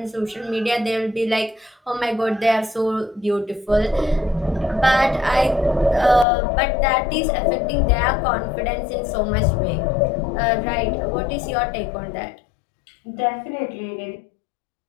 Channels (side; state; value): right; drops out; at 6.2 s